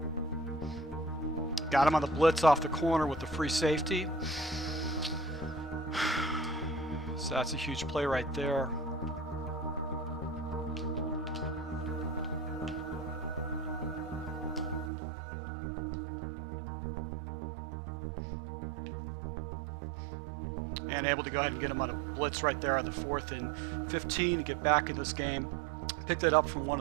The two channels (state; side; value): drops out; left; at 14.9 s